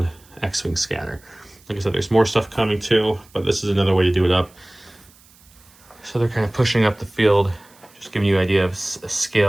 X-Wing scatter. Like I said, there's more stuff coming too, but this is another way to do it up. So they're kind of pushing up the field, just giving you an idea of a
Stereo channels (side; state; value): right; noise; hiss, 28 dB below the sound